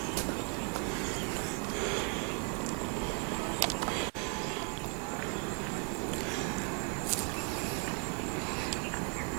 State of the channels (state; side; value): quieter; left; 39.1 dB